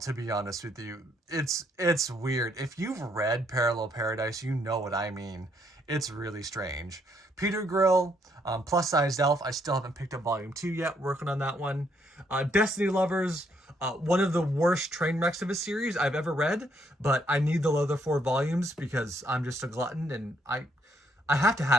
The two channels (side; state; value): both; normal; correlation 0.71